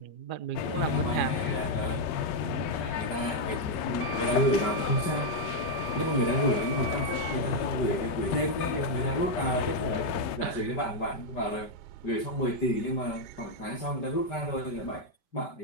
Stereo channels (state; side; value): late; right; 5.2 ms